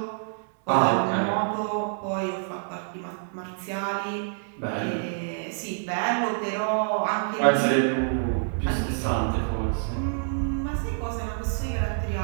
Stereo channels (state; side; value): silent; left; digital silence